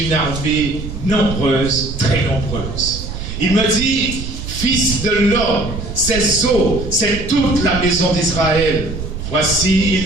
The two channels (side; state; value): right; noise; rumble, 7 dB below the sound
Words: armée nombreuse, très nombreuse. Il me dit, fils de l'homme, ces eaux, c'est toute la maison d'Israël. Voici,